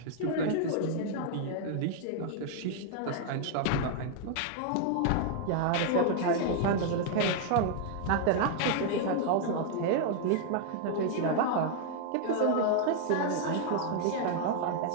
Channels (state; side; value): different; both; correlation 0.00